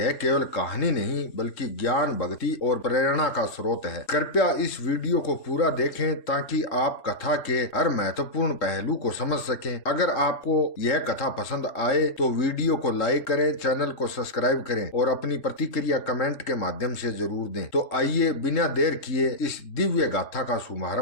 केवल कहानी नहीं बल्कि ज्ञान, भक्ति और प्रेरणा का स्रोत है। कृपया इस वीडियो को पूरा देखें ताकि आप कथा के हर महत्वपूर्ण पहलू को समझ सकें। अगर आपको यह कथा पसंद आए तो वीडियो को लाइक करें, चैनल को सब्सक्राइब करें और अपनी प्रतिक्रिया कमेंट के माध्यम से जरूर दें। तो आइए बिना देर किए इस दिव्य गाथा का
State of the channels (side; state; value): right; late; 3.7 ms